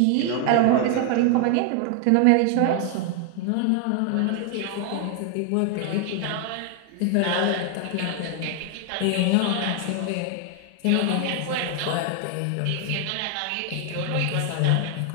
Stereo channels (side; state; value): both; different; correlation 0.00